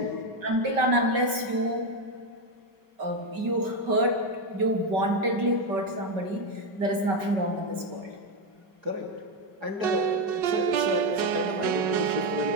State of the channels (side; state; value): left; late; 5.2 ms